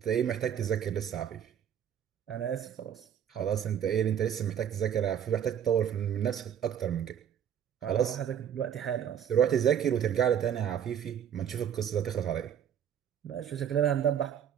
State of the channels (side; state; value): left; quieter; 9.1 dB